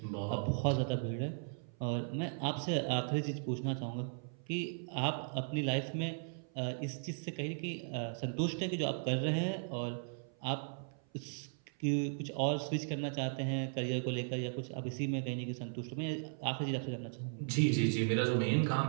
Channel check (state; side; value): silent; left; 53 dB below the other